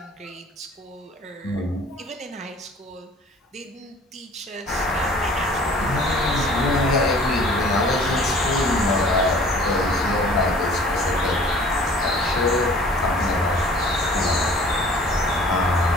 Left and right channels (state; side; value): normal; both; correlation 0.49